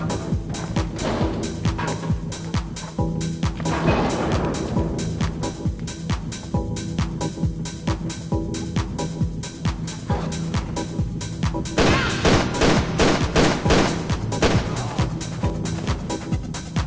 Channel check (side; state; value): both; identical; correlation 1.00